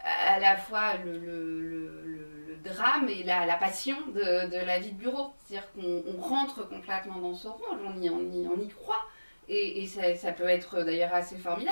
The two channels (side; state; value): both; inverted; correlation -1.00